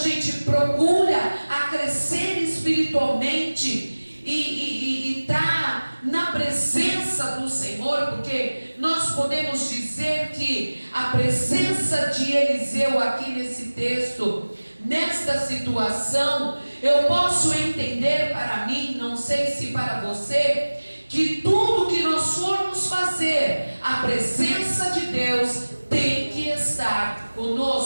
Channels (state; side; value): inverted; both; correlation -1.00